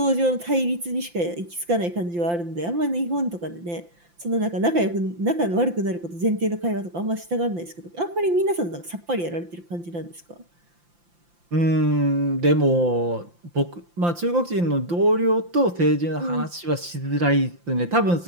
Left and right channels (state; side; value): late; left; 5.8 ms